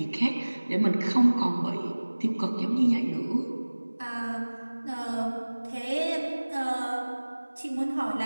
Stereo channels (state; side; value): inverted; both; correlation -1.00